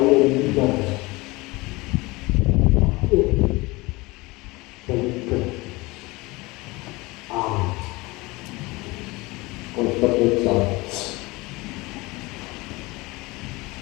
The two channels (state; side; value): quieter; right; 22.9 dB